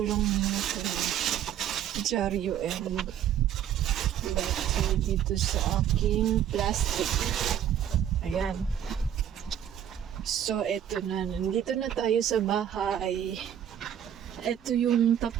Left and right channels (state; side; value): quieter; left; 10.1 dB